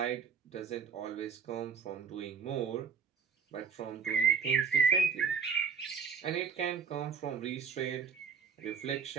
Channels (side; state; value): left; quieter; 6.2 dB